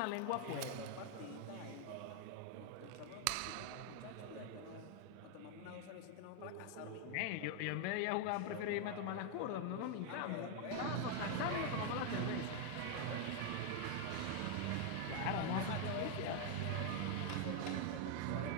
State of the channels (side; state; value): both; different; correlation 0.00